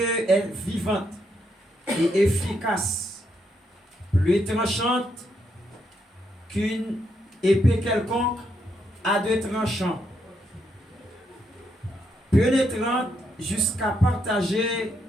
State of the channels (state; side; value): normal; both; correlation 0.78